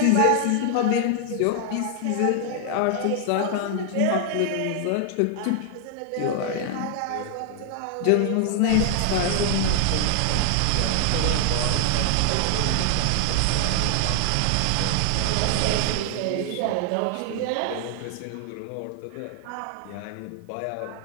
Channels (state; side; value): different; both; correlation 0.00